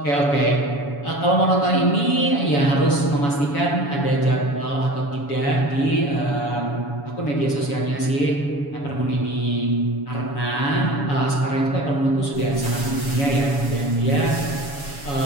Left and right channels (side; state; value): right; late; 7.1 ms